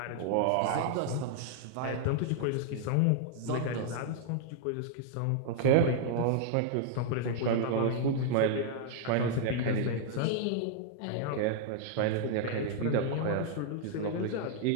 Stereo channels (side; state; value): both; different; correlation -0.01